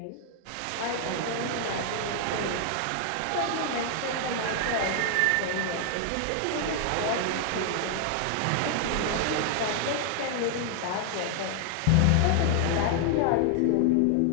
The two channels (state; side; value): different; both; correlation 0.00